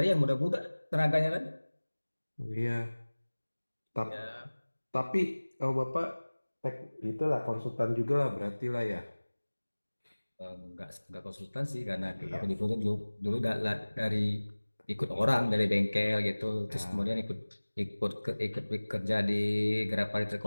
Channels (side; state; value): both; inverted; correlation -1.00